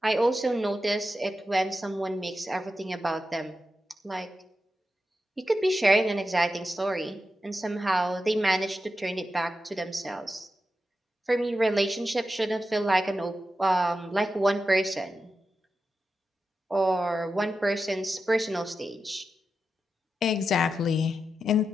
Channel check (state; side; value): normal; both; correlation 0.90